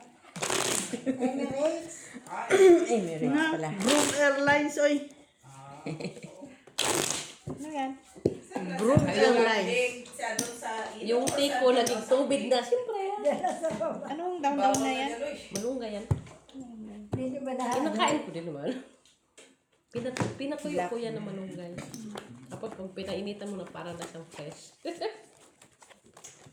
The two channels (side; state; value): both; identical; correlation 1.00